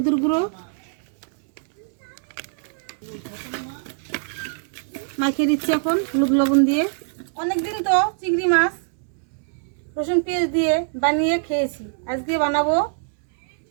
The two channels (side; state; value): left; silent; 63 dB below the other